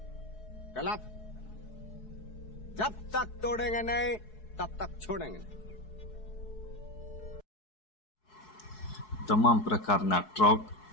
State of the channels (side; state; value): right; late; 4.7 ms